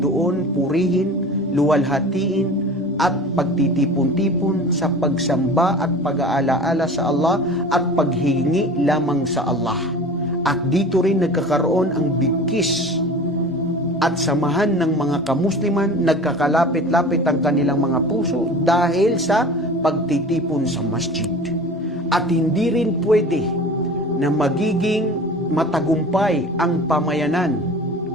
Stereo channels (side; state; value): both; normal; correlation 0.38